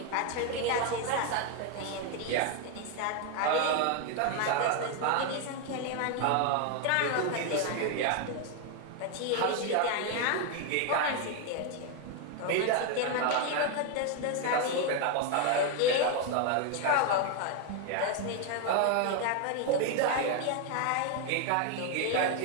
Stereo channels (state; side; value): different; both; correlation 0.01